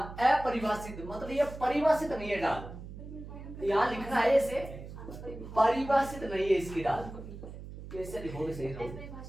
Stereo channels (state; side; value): noise; right; hum, 12 dB below the sound